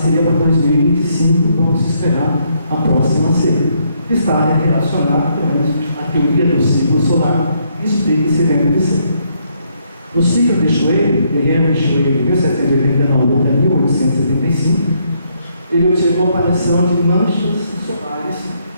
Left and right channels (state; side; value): inverted; both; correlation -0.73